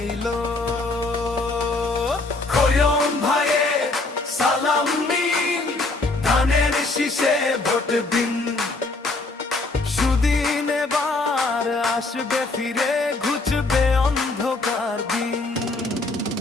খোয়াম ভাইয়ে সালাম নিন, ধানের শীষে ভোট দিন। সুদিন এবার আসবে ফিরে, ঘুচবে অন্ধকার দিন।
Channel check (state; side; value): quieter; right; 3.3 dB